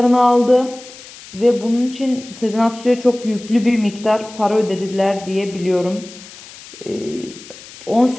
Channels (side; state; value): left; noise; hiss, 18 dB below the sound